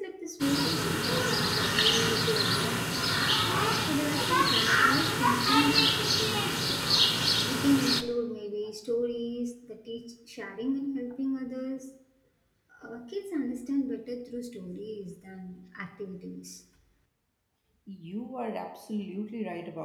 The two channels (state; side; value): identical; both; correlation 1.00